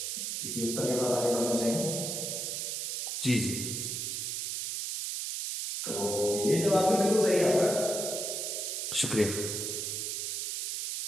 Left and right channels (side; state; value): right; noise; hiss, 2 dB below the sound